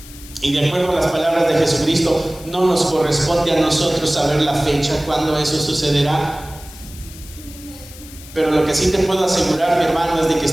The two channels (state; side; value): noise; left; hiss, 18 dB below the sound